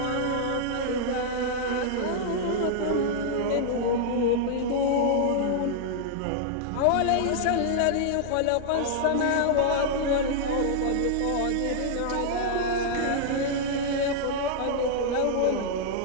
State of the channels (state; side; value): different; both; correlation -0.01